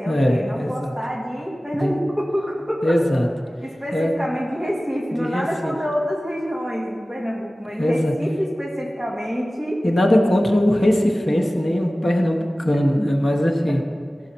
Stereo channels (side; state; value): both; normal; correlation 0.97